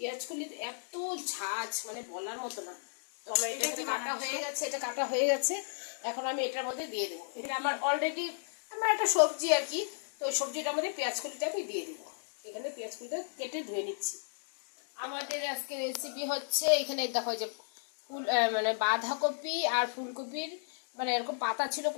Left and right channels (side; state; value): right; silent; digital silence